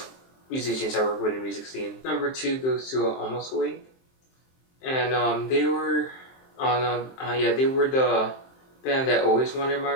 musicians I work with in the music scene. Number two goes to Almost Awake, and they were on they were the band that always wanted my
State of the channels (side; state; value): right; late; 23 ms